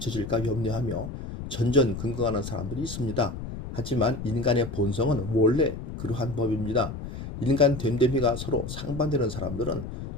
염려하며 전전긍긍하는 사람들이 있습니다. 하지만 인간의 본성은 원래 그러한 법입니다. 인간 됨됨이가 서로 상반되는 사람들은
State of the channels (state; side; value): noise; left; rumble, 8 dB below the sound